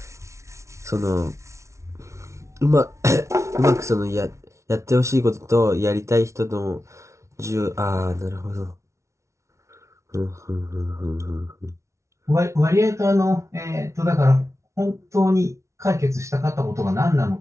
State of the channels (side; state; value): left; late; 0.14 ms